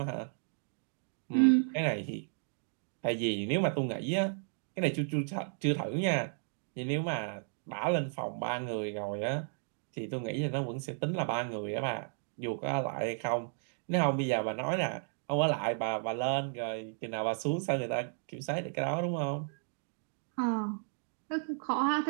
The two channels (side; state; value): left; silent; digital silence